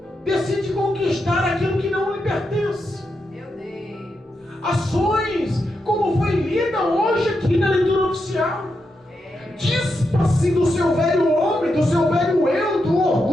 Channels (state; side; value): normal; both; correlation 0.85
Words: decide conquistar aquilo que não lhe pertence. Meu Deus. Ações como foi lida hoje aqui na leitura oficial. Dispa-se do seu velho homem, do seu velho eu, do